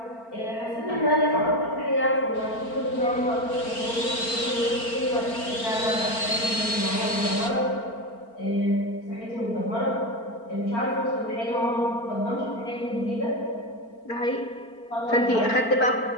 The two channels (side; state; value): right; late; 4.4 ms